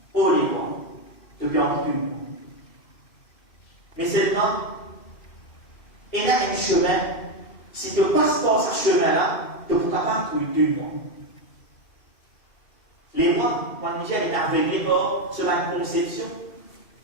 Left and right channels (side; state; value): right; late; 2.7 ms